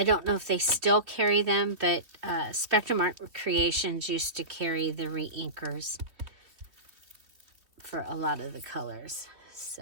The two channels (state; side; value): late; left; 3.1 ms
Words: don't know if they still carry them, but Spectrum Art Creations used to carry the re-inkers for a lot of the colors. So,